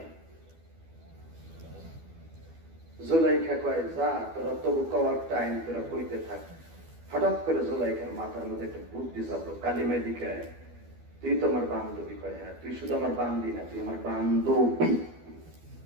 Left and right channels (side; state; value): left; late; 12 ms